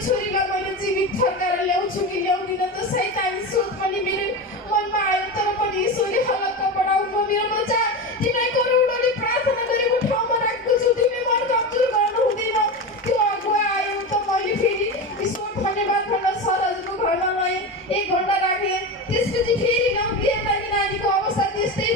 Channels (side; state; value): both; normal; correlation 0.22